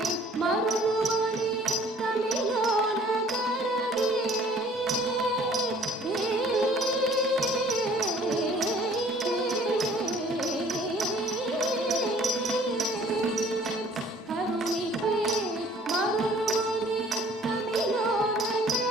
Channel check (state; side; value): normal; both; correlation 0.54